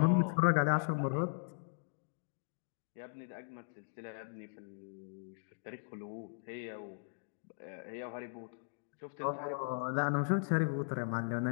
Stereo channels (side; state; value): right; silent; digital silence